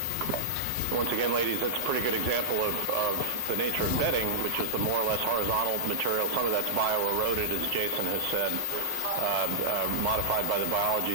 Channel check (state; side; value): normal; both; correlation -0.02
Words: Once again, ladies, that's a pretty good example of the nature of bedding, which is the more or less horizontal material. Some of that's bio-eroded, as Jason has said, modified by the